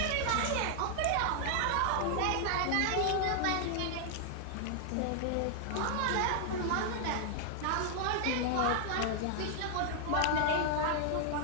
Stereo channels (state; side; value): different; both; correlation 0.00